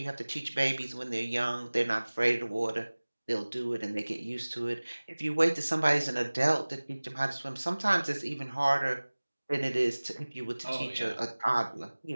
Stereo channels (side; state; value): both; inverted; correlation -1.00